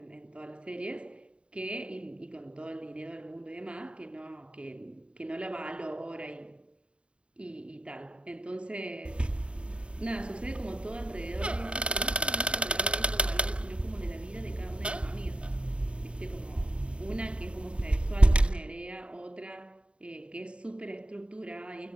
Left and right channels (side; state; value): left; late; 0.056 ms